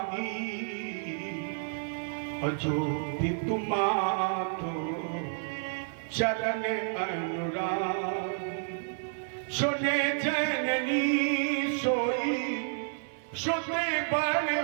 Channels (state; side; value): silent; left; digital silence